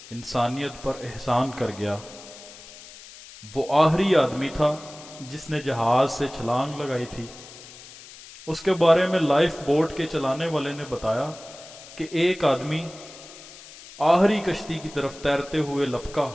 انسانیت پر احسان کر گیا۔ وہ آخری آدمی تھا جس نے جہاز سے چھلانگ لگائی تھی۔ اس کے بارے میں لائف بوٹ کے چلانے والے نے بتایا کہ ایک آدمی آخری کشتی کی طرف تیرتے ہوئے لپکا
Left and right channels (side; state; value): left; noise; hiss, 18 dB below the sound